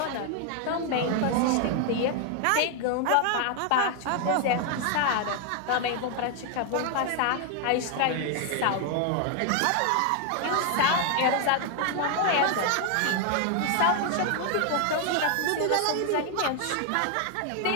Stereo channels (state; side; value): different; both; correlation 0.00